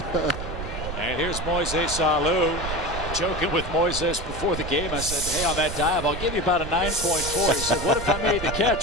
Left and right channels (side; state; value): right; noise; rumble, 7 dB below the sound